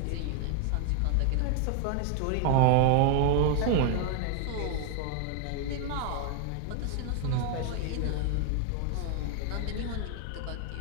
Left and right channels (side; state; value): both; different; correlation 0.00